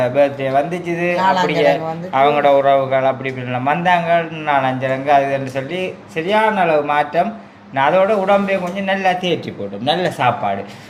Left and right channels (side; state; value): both; identical; correlation 1.00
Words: பர்த்டே வந்துச்சுது. அப்படியே அவங்களோட உறவுகள் அப்படி இப்படிலாம் வந்தாங்க 4-5 அதுன்னு சொல்லி சரியான அளவு மாற்றம். நான் அதோட உடம்பையும் கொஞ்சம் நல்லா தேற்றி போட்டோம். நல்ல சாப்பாடு,